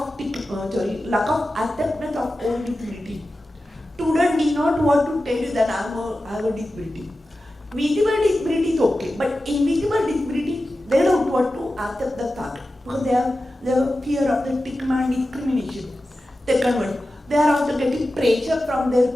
acceptance of own disability. Student did not want to tell you that I have a disability. Visible disability is okay, but invisible disability, they don't want to accept the fact because they have fear of the stigma and discrimination. Second one, they are also getting pressure from their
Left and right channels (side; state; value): both; normal; correlation 0.93